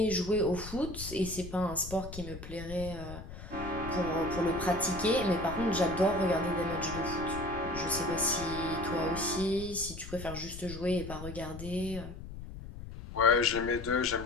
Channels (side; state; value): left; noise; rumble, 11 dB below the sound